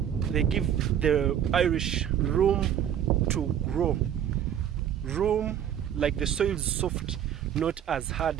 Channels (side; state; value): left; quieter; 9.8 dB